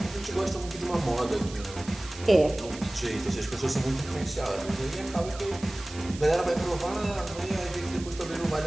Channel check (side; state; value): right; noise; hiss, 15 dB below the sound